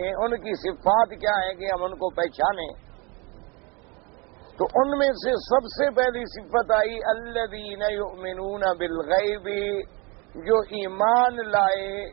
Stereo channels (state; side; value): quieter; left; 28.3 dB